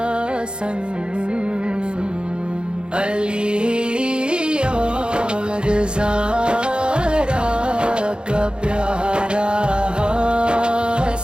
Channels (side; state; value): left; late; 0.052 ms